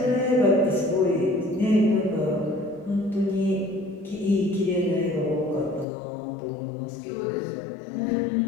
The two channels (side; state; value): right; drops out; at 5.9 s